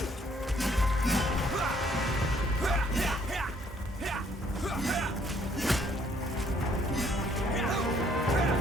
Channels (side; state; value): both; normal; correlation 0.65